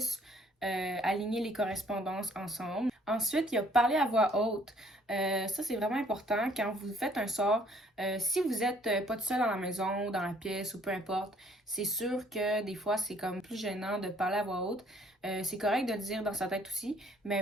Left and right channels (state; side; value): normal; both; correlation 0.61